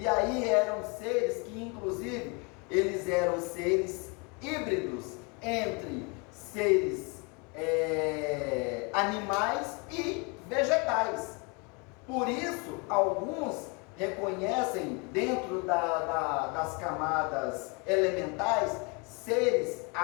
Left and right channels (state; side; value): quieter; right; 31.6 dB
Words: aí eram seres que, inclusive, eles eram seres híbridos entre seres animais e vegetais. Por isso, alguns reconhecem dentro das camadas elementais seres